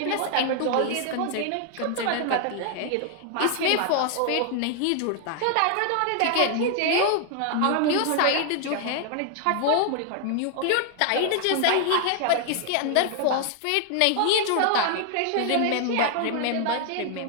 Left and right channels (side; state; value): both; different; correlation 0.00